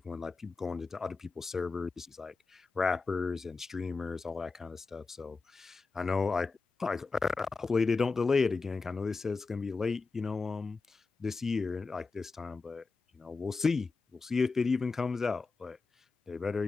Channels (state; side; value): quieter; right; 4.2 dB